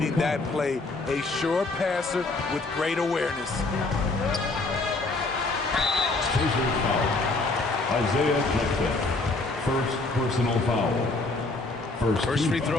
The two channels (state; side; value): quieter; right; 3.3 dB